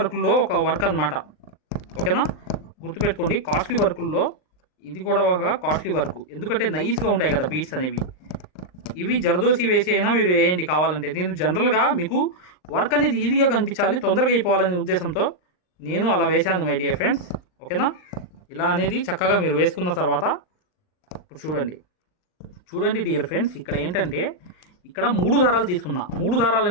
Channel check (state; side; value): late; right; 39 ms